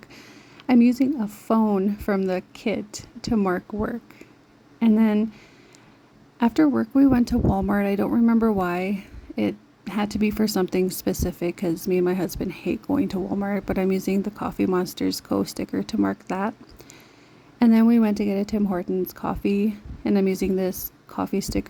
a phone from the kit to mark work. And then after work, we went to Walmart. I don't remember why. It had to be for something specific because me and my husband hate going to Walmart, but I'm using the Coffee Monsters Co. sticker to mark that. And then we went to get a Tim Hortons coffee, and I'm using this coffee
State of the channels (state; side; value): identical; both; correlation 1.00